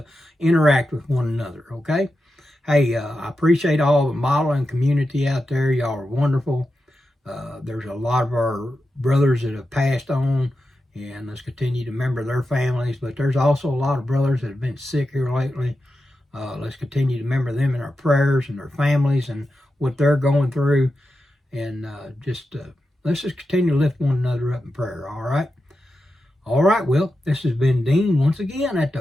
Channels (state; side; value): normal; both; correlation 0.90